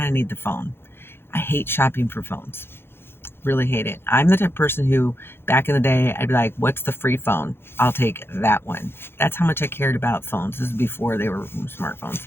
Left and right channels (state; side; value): late; right; 0.11 ms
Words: of need the phone. I hate shopping for phones. Really hate it. I'm the type of person who, back in the day, I'd be like, what's the free phone? I'll take that one. That's how much I cared about phones. This is before they were smartphones.